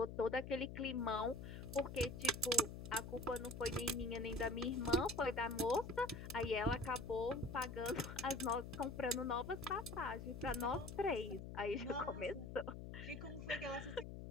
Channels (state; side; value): noise; left; hum, 9 dB below the sound